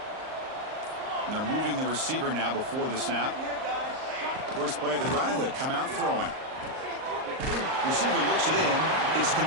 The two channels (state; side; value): late; left; 38 ms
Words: And they're moving the receiver now before the snap. First play of the drive, they come out throwing. Receiver looks it in. It's